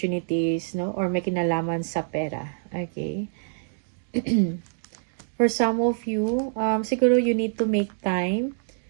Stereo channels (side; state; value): left; silent; digital silence